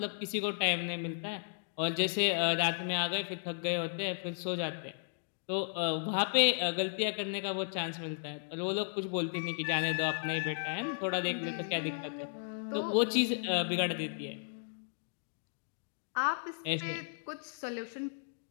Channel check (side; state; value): right; silent; digital silence